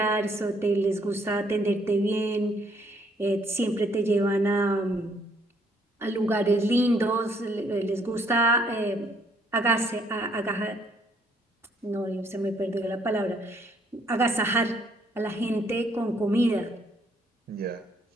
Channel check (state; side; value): normal; both; correlation 0.66